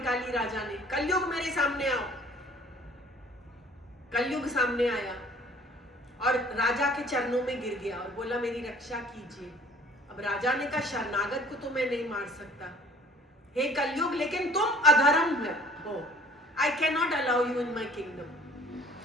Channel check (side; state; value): both; normal; correlation 0.52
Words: राजा ने, कलयुग मेरे सामने आओ। कलयुग सामने आया और राजा के चरणों में गिर गया और बोला, मेरी रक्षा कीजिए। अब राजा ने कहा, शरणागत को तो मैं नहीं मार सकता, हे कलयुग, लेकिन तुम अधर्म हो। I can not allow you in my kingdom.